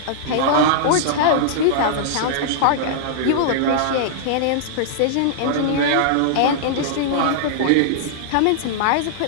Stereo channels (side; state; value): both; different; correlation -0.01